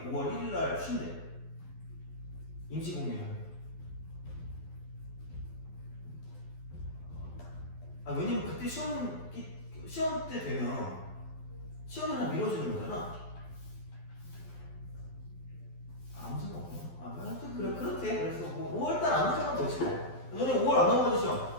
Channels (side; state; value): right; late; 12 ms